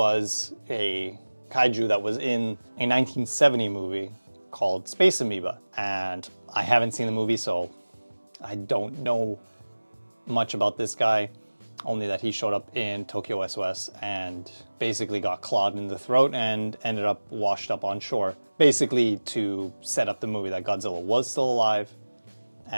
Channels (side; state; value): both; inverted; correlation -1.00